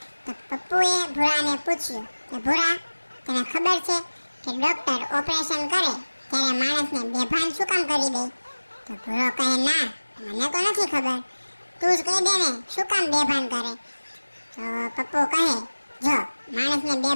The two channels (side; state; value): both; inverted; correlation -1.00